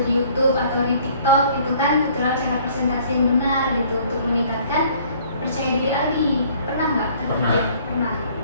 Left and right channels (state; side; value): inverted; both; correlation -0.57